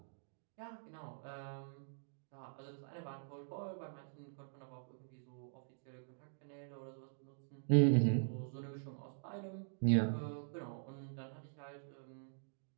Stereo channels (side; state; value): left; silent; digital silence